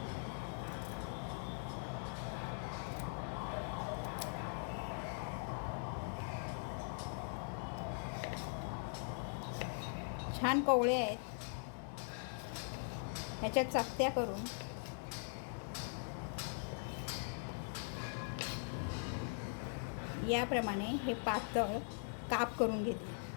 छान कोवळे आहेत. याच्या चकत्या करून याप्रमाणे हे पातळ काप करून घेते.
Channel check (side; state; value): right; silent; 50 dB below the other